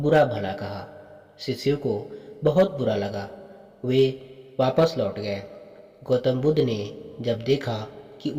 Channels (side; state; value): both; identical; correlation 1.00